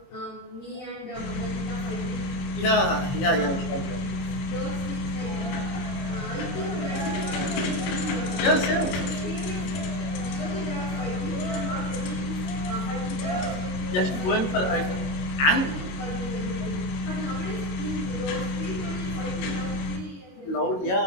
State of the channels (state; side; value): late; right; 22 ms